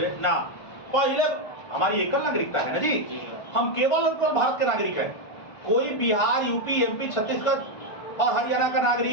ना, पहले हमारी एकल नागरिकता है ना जी, हम केवल और केवल भारत के नागरिक हैं। कोई बिहार, यूपी, एमपी, छत्तीसगढ़ और हरियाणा का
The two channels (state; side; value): late; right; 1.5 ms